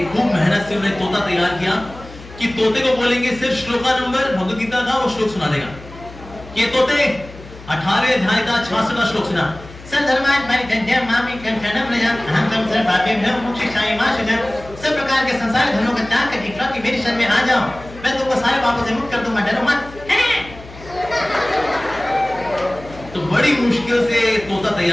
खूब मेहनत से उन्हें तोता तैयार किया कि तोते को बोलेंगे सिर्फ श्लोका नंबर भगवद गीता का वो श्लोक सुना देगा। ये तोते 18वें अध्याय का 66वां श्लोक सुना। सब प्रकार के संसार धर्मों का त्याग करके कि मेरी शरण में आ जाओ, मैं तुमको सारे पापों से मुक्त कर दूंगा, डरो मत। तो बड़ी मुश्किल से तोता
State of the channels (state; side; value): noise; left; hum, 17 dB below the sound